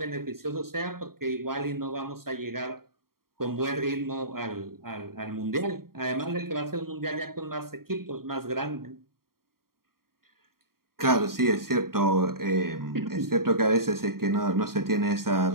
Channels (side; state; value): left; late; 0.93 ms